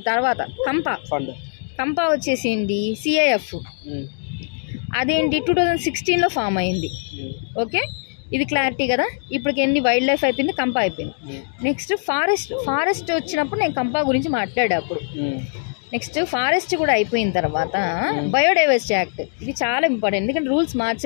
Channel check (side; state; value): right; silent; digital silence